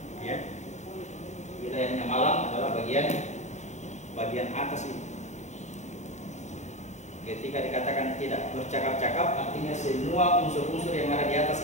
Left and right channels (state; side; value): late; right; 0.34 ms